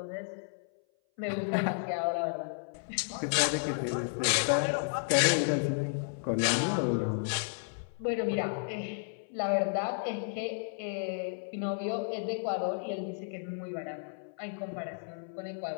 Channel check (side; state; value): right; silent; 56 dB below the other